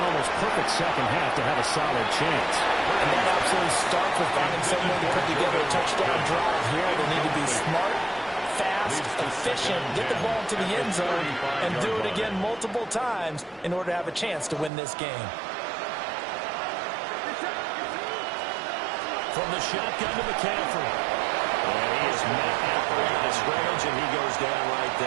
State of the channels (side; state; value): left; drops out; at 14.7 s